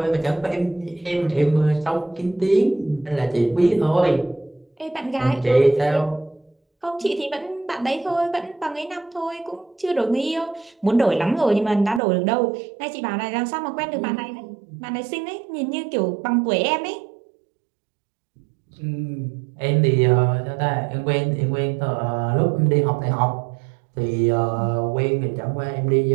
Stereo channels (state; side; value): drops out; left; at 12.0 s